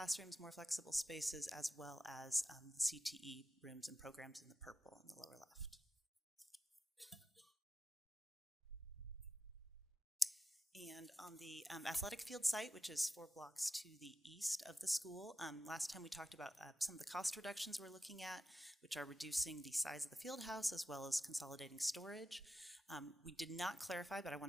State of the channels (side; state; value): both; normal; correlation 0.91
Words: more flexible spaces, as well as the CTE rooms and programs in the purple in the lower left. And on the athletic field site, which is 4 blocks to the east of the school, last time we talked about some of the cost reductions we're looking at, which are reducing the size of the field house as well as consolidating storage. We did not clarify, but I